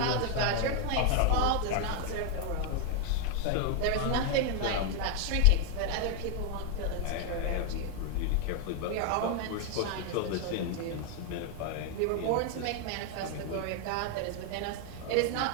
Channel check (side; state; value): both; different; correlation 0.01